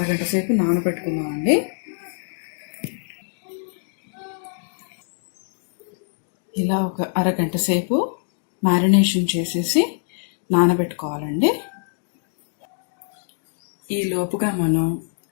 సేపు నానబెట్టుకుందామండి. ఇలా ఒక అరగంట సేపు మ్యారినేషన్ చేసేసి నానబెట్టుకోవాలండి. ఈ లోపుగా మనం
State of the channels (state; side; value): silent; right; digital silence